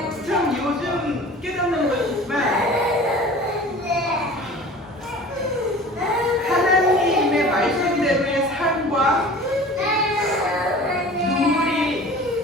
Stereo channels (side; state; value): both; normal; correlation 0.42